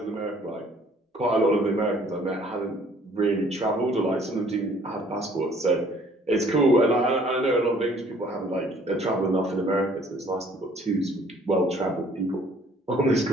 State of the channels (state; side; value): normal; both; correlation 0.58